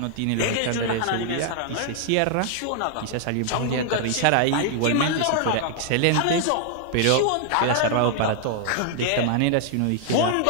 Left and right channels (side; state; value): both; different; correlation 0.00